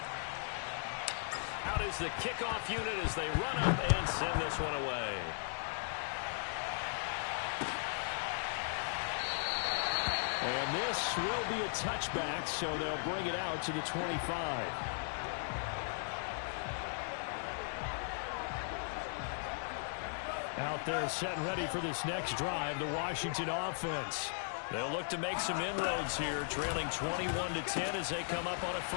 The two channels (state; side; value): silent; right; digital silence